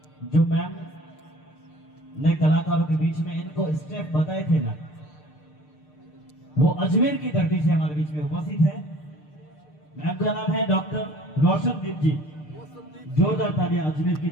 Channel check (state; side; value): late; right; 6.6 ms